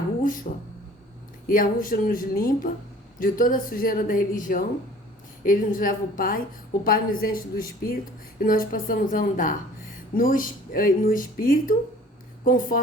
Yahushua nos limpa de toda a sujeira da religião, ele nos leva o Pai nos enche do Espírito e nós passamos a andar no Espírito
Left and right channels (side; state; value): both; normal; correlation 0.49